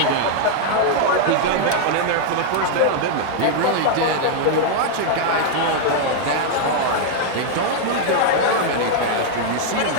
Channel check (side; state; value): both; different; correlation 0.00